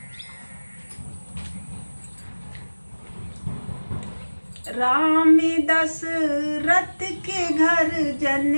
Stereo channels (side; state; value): both; inverted; correlation -1.00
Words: राम दशरथ के घर जन